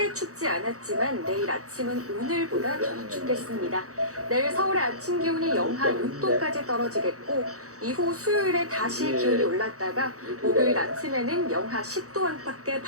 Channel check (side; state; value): left; late; 0.65 ms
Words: 춥지 않았지만 내일 아침은 오늘보다 더 춥겠습니다. 내일 서울의 아침 기온이 영하 6도까지 떨어지겠고 이후 수요일에 다시 기온이 올랐다가 목요일 아침에는 영하 10도 안팎의